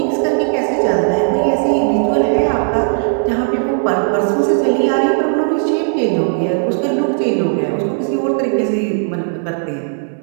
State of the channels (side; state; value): left; silent; digital silence